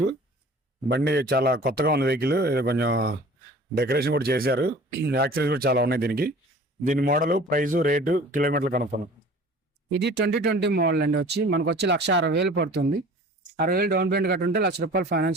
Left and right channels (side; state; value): both; normal; correlation 0.45